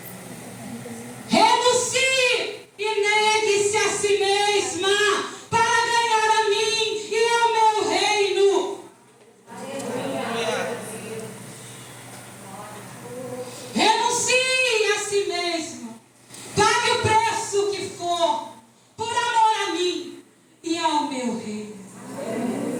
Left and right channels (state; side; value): identical; both; correlation 1.00